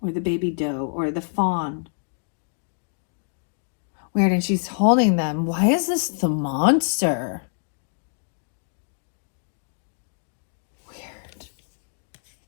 Or the baby doe. Or the fawn. Weird, and she's holding them. Why is this the monster? Weird.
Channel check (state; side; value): silent; right; digital silence